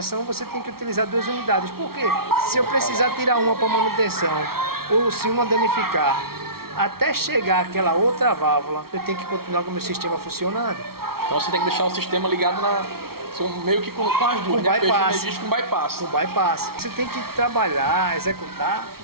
você tem que utilizar 2 unidades. Por quê? Se eu precisar tirar uma para manutenção ou se uma danificar, até chegar aquela outra válvula, eu tenho que continuar com o meu sistema funcionando. Então você tem que deixar o sistema ligado meio que com as duas, né? Bypass. Com bypass. Com bypass. Você tem que trabalhar, executar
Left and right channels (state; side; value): late; left; 0.94 ms